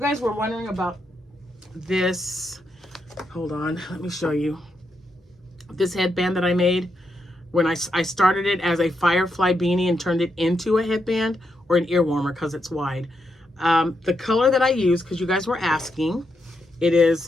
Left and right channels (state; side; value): normal; both; correlation 0.82